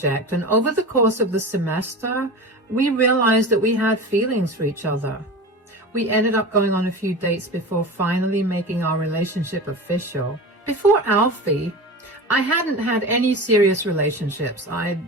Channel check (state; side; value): normal; both; correlation 0.30